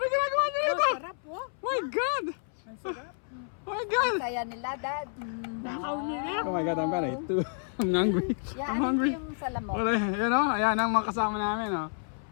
ginagawa niyo ito? Sarap po. My God! Oh my God! Saya nila, Dad. Nakaw nila. Oh my God, I'm gonna eat too. I'm hungry. Yan, I'm ano hungry. yung salamok? Wala, yan o. Ayan ang mga kasama namin o.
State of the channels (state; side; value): silent; right; 58 dB below the other